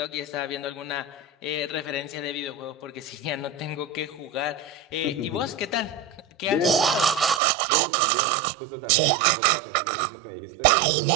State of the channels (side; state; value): left; drops out; at 7.4 s